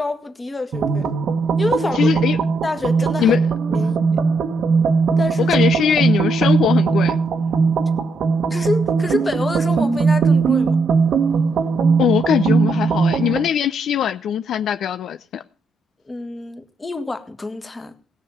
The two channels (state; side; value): normal; both; correlation 0.77